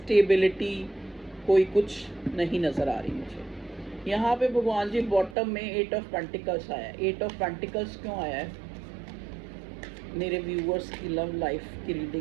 कोई कुछ नहीं नजर आ रही मुझे। यहाँ पे भगवान जी बॉटम में 8 ऑफ पेंटिकल्स आया है। 8 ऑफ पेंटिकल्स क्यों आया है मेरे व्यूअर्स की लव लाइफ की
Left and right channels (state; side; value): drops out; left; at 5.4 s